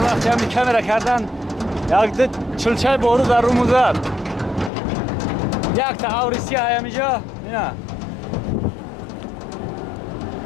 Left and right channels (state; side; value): drops out; right; at 4.7 s